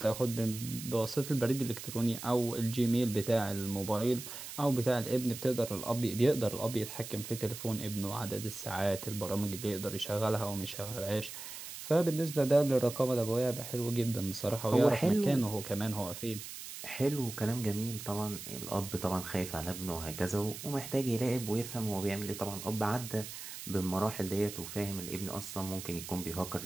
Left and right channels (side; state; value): right; noise; hiss, 10 dB below the sound